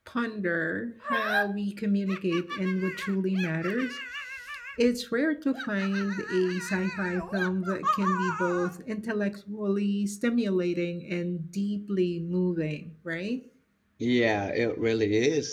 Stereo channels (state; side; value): identical; both; correlation 1.00